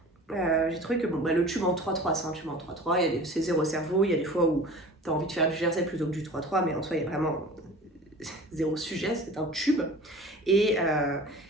j'ai trouvé que bon, le tube en 3-3, c'est un tube en 3-3, c'est zéro cerveau, il y a des fois où tu as envie de faire du jersey plutôt que du 3-3, mais en soi il y a vraiment zéro sujet, c'est un tube. Et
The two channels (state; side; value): normal; both; correlation 0.41